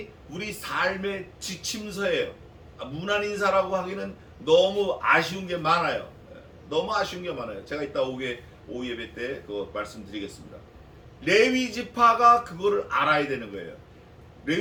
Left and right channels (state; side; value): identical; both; correlation 1.00